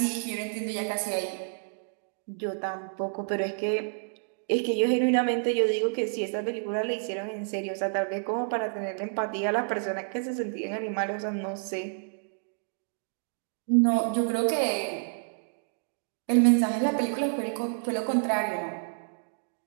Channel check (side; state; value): left; silent; digital silence